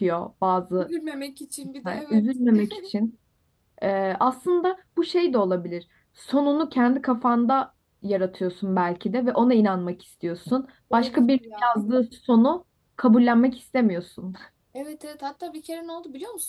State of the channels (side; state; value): both; identical; correlation 1.00